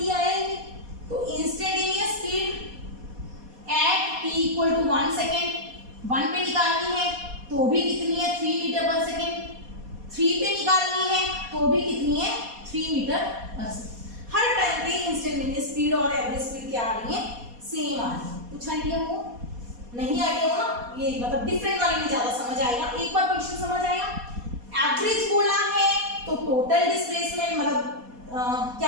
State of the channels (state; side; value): late; left; 4.2 ms